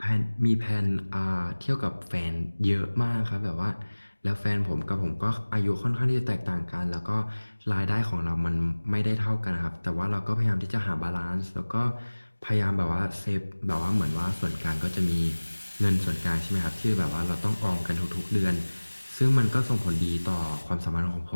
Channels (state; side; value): inverted; both; correlation -1.00